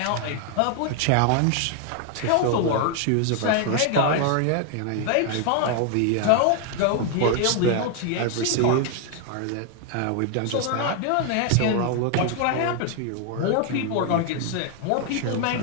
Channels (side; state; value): both; different; correlation 0.00